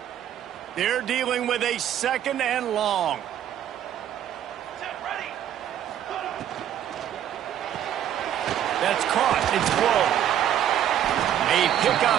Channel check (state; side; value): quieter; left; 10.6 dB